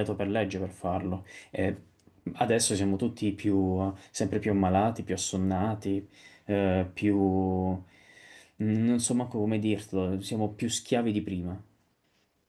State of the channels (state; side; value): identical; both; correlation 1.00